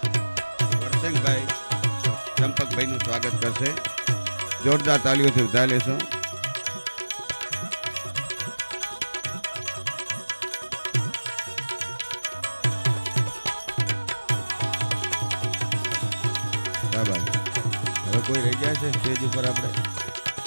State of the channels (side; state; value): both; inverted; correlation -1.00